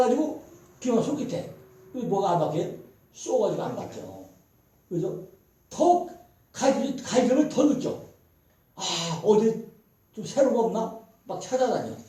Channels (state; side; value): identical; both; correlation 1.00